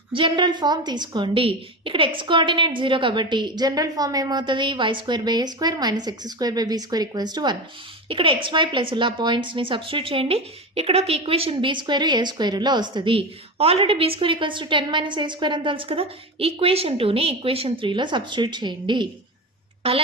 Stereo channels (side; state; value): both; normal; correlation 0.22